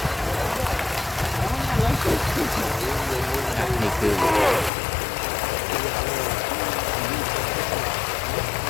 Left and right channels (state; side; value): drops out; right; at 4.7 s